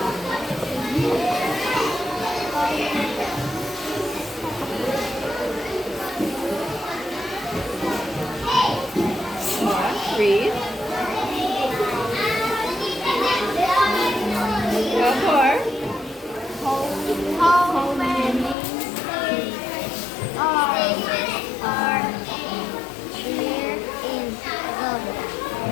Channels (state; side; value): drops out; right; at 18.6 s